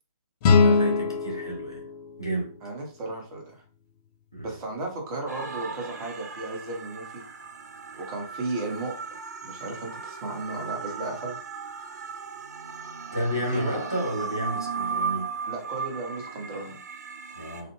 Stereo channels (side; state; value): both; inverted; correlation -0.54